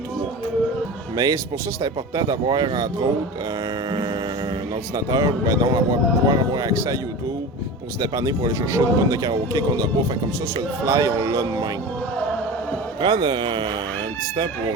3. Mais c'est pour ça que c'est important d'avoir, entre autres, un ordinateur, ben non, pouvoir avoir accès à YouTube pour se dépanner pour aller chercher une tonne de karaoké qu'on n'a pas. Fait comme ça, sur le fly, on l'a de même. Prendre un petit temps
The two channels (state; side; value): normal; both; correlation 0.31